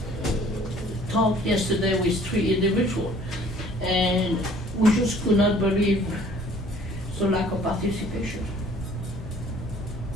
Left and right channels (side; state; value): both; normal; correlation 0.55